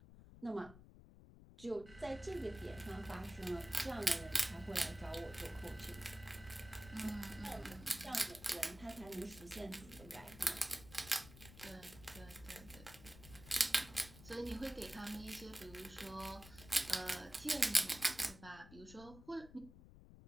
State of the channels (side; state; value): left; noise; rumble, 17 dB below the sound